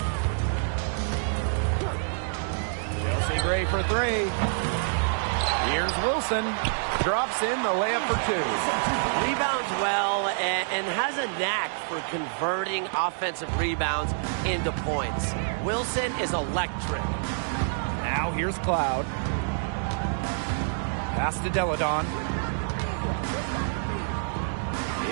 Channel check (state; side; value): silent; left; digital silence